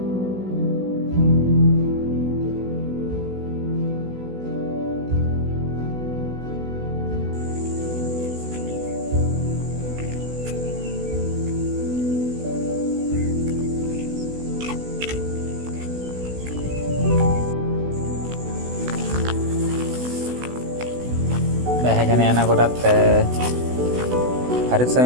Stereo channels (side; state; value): left; late; 16 ms